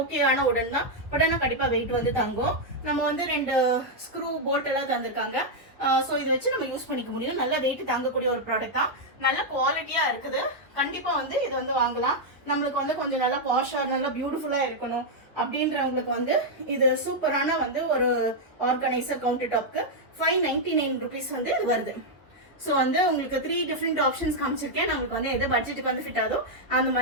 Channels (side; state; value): both; normal; correlation -0.02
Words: ஓகேயான உடன் தான், பட் ஆனால் கண்டிப்பா வெயிட் வந்து தாங்கும். நம்ம வந்து 2 ஸ்க்ரூ போல்ட் எல்லாம் தந்திருக்காங்க. ஸோ இதை வச்சு நம்ம யூஸ் பண்ணிக்க முடியும். நல்ல வெயிட் தாங்கக்கூடிய ஒரு ப்ராடக்ட் தான். நல்ல குவாலிட்டியா இருக்குது. கண்டிப்பா வந்து இது வந்து வாங்கலாம். நம்மளுக்கு வந்து கொஞ்சம் நல்லா பாஷா நல்லா பியூட்டிஃபுல்லா இருக்கணும் அப்படின்றவங்களுக்கு வந்து இது சூப்பரான வந்து ஒரு ஆர்கனைசர். கவுண்டர் டாப்க்கு 599 ருபீஸ் வந்து இது வருது. ஸோ வந்து உங்களுக்கு 3 டிஃப்ரெண்ட் ஆப்ஷன்ஸ் காமிச்சிருக்கேன். நம்மளுக்கு வந்து எது பட்ஜெட்டுக்கு வந்து ஃபிட் ஆகுதோ அந்த